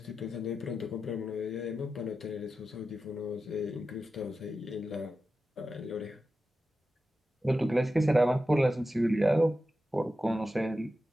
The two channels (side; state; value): both; normal; correlation 0.91